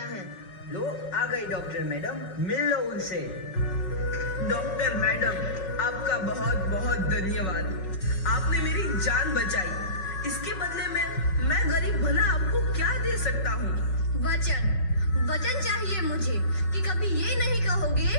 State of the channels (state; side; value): late; right; 5.2 ms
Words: है। लो, आ गई डॉक्टर मैडम, मिल लो उनसे। डॉक्टर मैडम, आपका बहुत बहुत धन्यवाद। आपने मेरी जान बचाई। इसके बदले में मैं गरीब भला आपको क्या दे सकता हूँ? वचन चाहिए मुझे कि कभी ये नहीं कहोगे